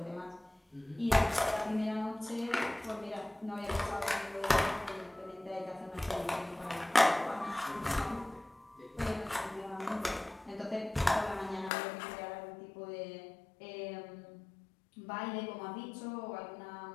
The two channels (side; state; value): right; drops out; at 11.7 s